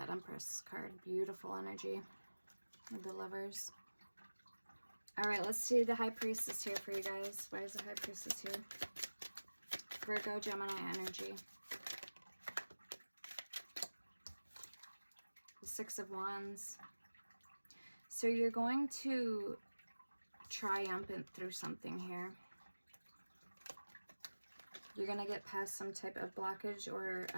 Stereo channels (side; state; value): both; inverted; correlation -1.00